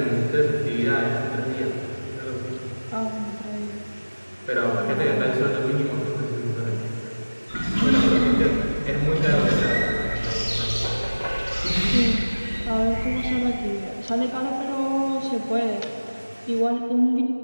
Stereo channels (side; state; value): both; inverted; correlation -1.00